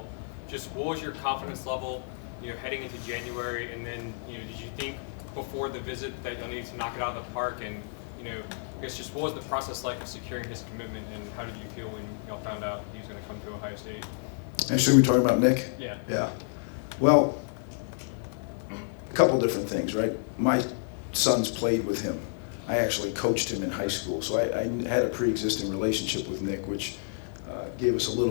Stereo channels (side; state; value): right; silent; digital silence